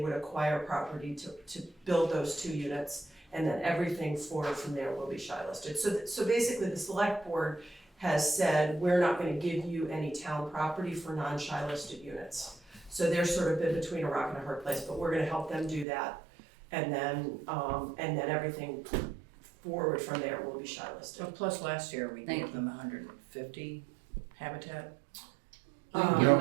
would acquire property to build those 2 units. And then everything forward from there will be shy listed. So basically, the select board has said, we're not gonna give you any town property for non-shy listed units. So they're sort of in between a rock and a hard place, but we're gonna help them do that. And then everything forward from there will be shy listed. So plus last year, we Thank gave you. them 150 habitat. We didn't give No. them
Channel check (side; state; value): left; drops out; at 15.9 s